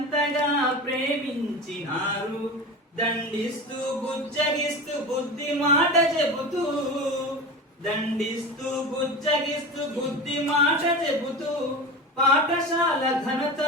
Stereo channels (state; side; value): normal; both; correlation 0.28